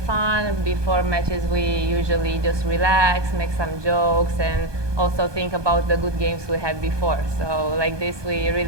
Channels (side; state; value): left; late; 1.2 ms